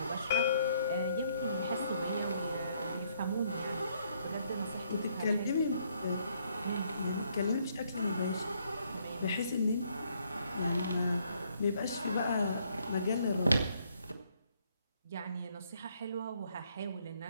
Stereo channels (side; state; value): both; inverted; correlation -0.69